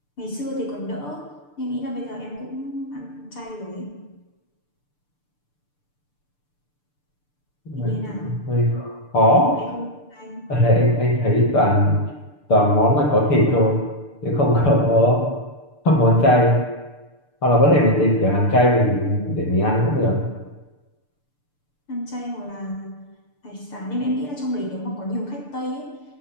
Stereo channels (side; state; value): right; late; 6.8 ms